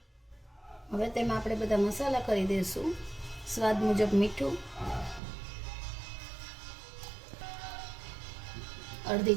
હવે તેમાં આપણે બધા મસાલા કરી દઈશું। સ્વાદ મુજબ મીઠું, અડધી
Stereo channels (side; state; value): left; drops out; at 5.2 s